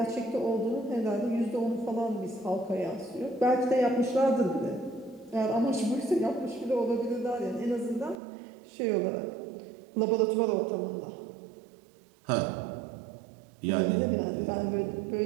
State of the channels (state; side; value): drops out; left; at 8.2 s